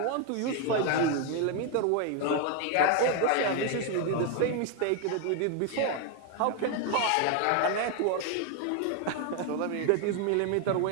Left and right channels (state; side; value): different; both; correlation 0.01